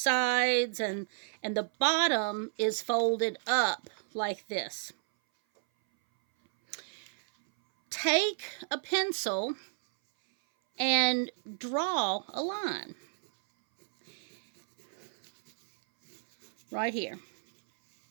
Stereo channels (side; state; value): left; silent; 57 dB below the other